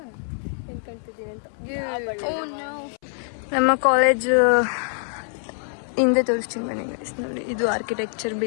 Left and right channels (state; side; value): silent; right; 62 dB below the other